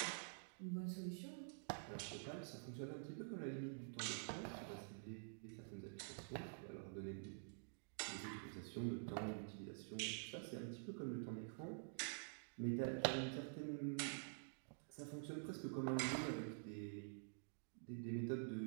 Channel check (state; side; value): silent; left; digital silence